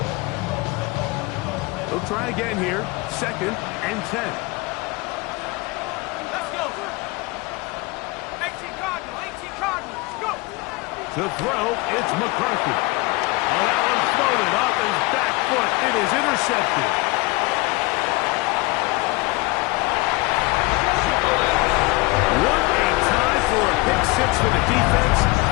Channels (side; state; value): right; quieter; 24.0 dB